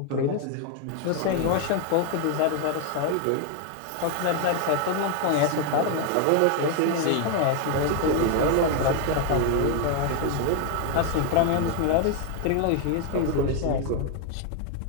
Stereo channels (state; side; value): different; both; correlation 0.01